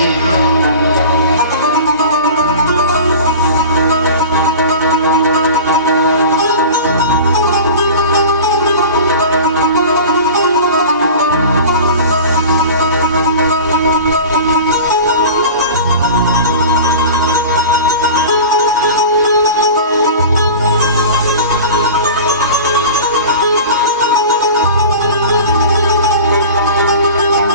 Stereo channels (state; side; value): inverted; both; correlation -0.36